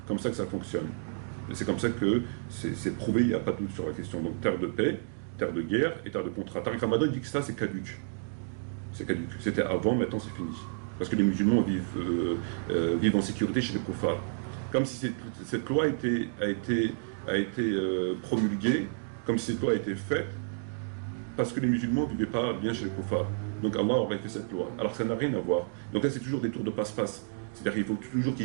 comme ça que ça fonctionne. Et c'est comme ça que c'est prouvé, il n'y a pas de doute sur la question. Donc terre de paix, terre de guerre et terre de contrat. Tariq Ramadan dit que ça c'est caduc. C'est caduc. C'était avant, maintenant c'est fini. Parce que les musulmans vivent en sécurité chez les kuffars. Comme si cette loi a été promulguée, comme si cette loi a été faite, parce que les musulmans ne vivaient pas bien chez les kuffars. Donc Allah aurait fait cette loi. Alors ça n'a rien à voir. Donc là c'est toujours des tours de passe-passe. C'est-à-dire qu'il faut toujours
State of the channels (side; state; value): left; silent; digital silence